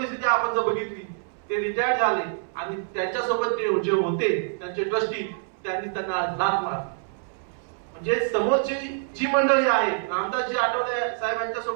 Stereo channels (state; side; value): silent; left; 61 dB below the other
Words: आपण जर बघितली, ते रिटायर्ड झाले आणि त्यांच्यासोबत ते जे होते त्यांचे ट्रस्टी, त्यांनी त्यांना लाथ मारली. म्हणजे समोरची जी मंडळी आहे, रामदासजी आठवले साहेबांच्या